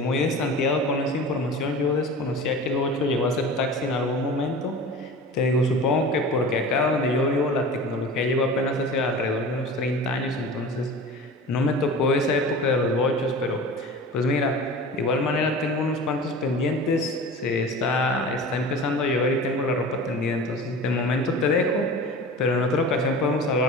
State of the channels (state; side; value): normal; both; correlation 0.36